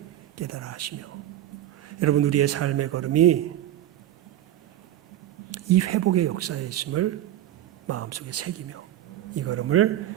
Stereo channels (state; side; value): quieter; left; 12.8 dB